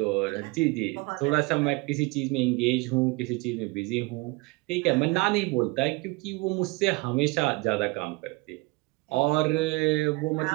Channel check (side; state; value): left; quieter; 25.2 dB